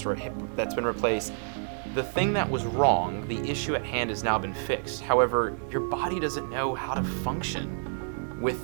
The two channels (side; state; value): left; silent; digital silence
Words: or a hip that's been replaced. The thing that was wrong, the issue at hand, has now been fixed. However, your body doesn't know how to function